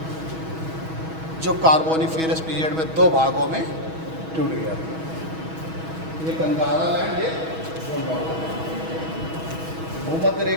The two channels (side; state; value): left; late; 6.2 ms